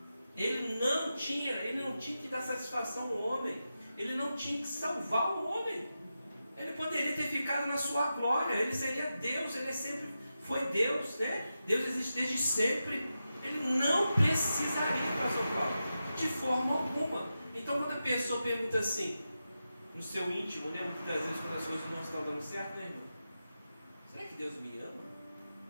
Ele não tinha que dar satisfação ao homem. Ele não tinha que salvar o homem. Ele poderia ter ficado na sua glória. Ele seria Deus. Ele sempre foi Deus, né? Deus existe desde sempre. Ele não precisaria para salvar, de forma alguma. Então, quando a pessoa pergunta assim, no seu íntimo, né? Muitas vezes, quando as coisas não estão dando certo, né, irmão? Será que Deus me ama?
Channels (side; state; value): both; inverted; correlation -0.90